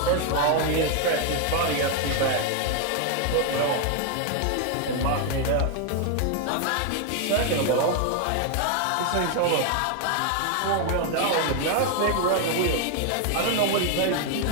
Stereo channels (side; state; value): both; different; correlation 0.00